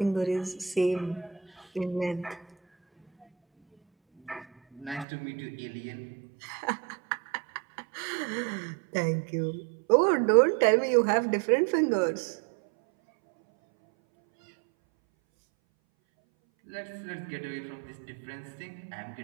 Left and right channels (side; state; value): left; drops out; at 5.1 s